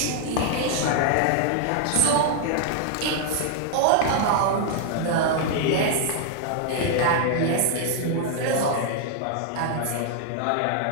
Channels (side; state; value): both; different; correlation 0.00